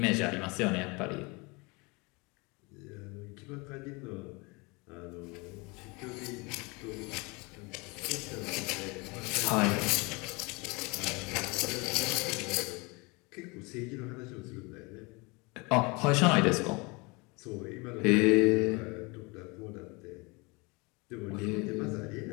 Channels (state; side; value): quieter; right; 27.5 dB